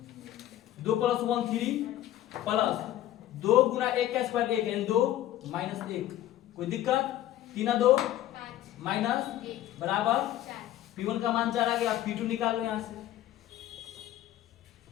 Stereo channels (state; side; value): quieter; right; 13.2 dB